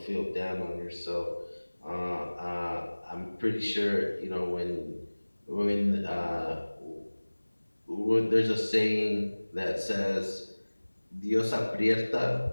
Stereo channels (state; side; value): inverted; both; correlation -1.00